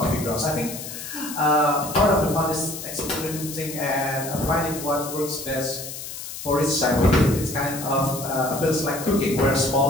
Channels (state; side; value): noise; left; hiss, 9 dB below the sound